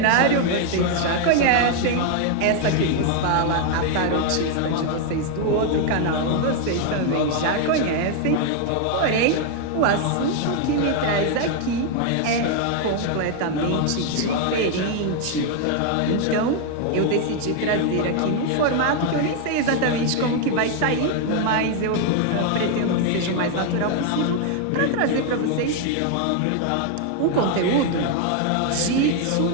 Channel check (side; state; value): both; different; correlation 0.00